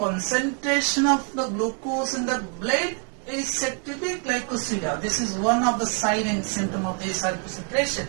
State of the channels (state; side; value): quieter; left; 37.5 dB